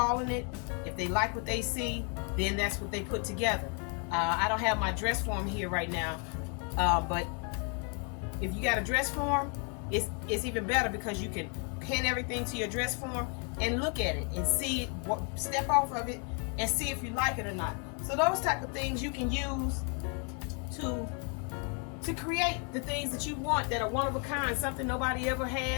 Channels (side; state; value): right; quieter; 38.1 dB